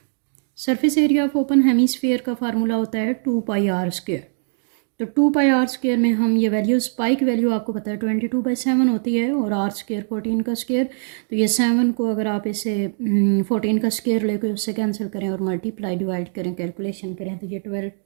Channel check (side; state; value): left; silent; digital silence